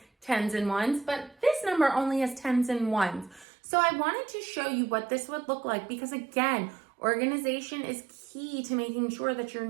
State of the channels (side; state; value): left; drops out; at 3.5 s